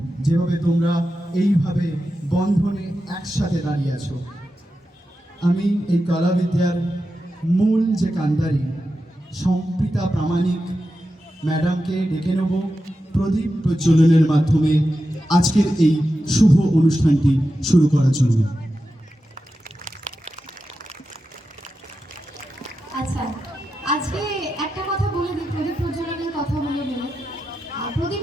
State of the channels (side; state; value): both; normal; correlation 0.90